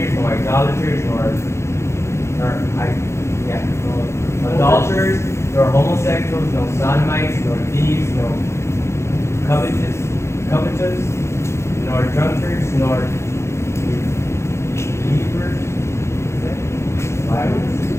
nor idolaters, nor adulterers, nor homosexuals, nor sodomites, nor thieves, nor covetous, nor drunkards, nor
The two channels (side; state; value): right; late; 0.13 ms